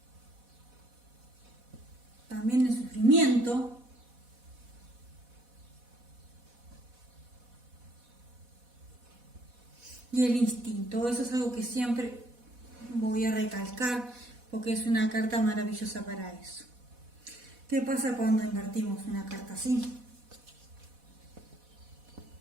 También el sufrimiento. Y el instinto, eso es algo que siempre voy a recalcar porque es una carta maravillosa para eso. ¿Qué pasa cuando invertimos una carta así?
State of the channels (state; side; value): late; left; 4.1 ms